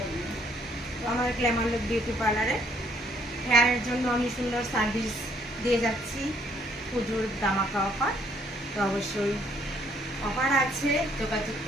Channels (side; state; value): both; normal; correlation 0.66